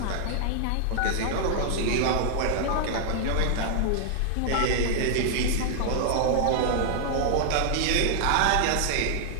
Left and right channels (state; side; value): different; both; correlation 0.00